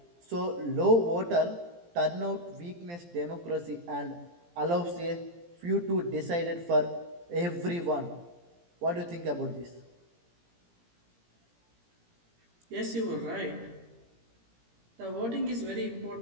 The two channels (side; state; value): left; late; 17 ms